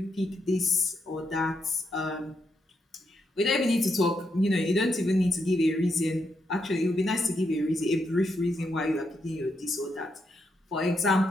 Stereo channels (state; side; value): normal; both; correlation 0.81